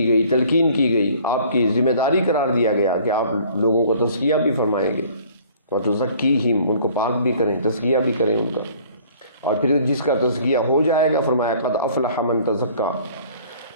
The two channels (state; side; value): inverted; both; correlation -0.54